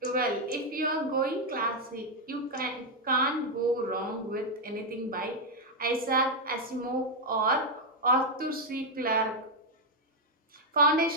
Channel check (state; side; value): normal; both; correlation 0.01